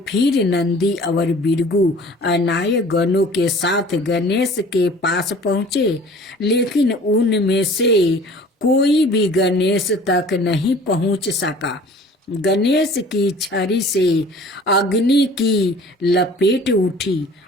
फिर नंदी और बिरगू अनाय गणों के साथ गणेश के पास पहुँचे, लेकिन उनमें से कोई भी गणेश तक नहीं पहुँच सका। गणेश की छड़ी से अग्नि की लपेट उठी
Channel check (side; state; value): both; normal; correlation 0.48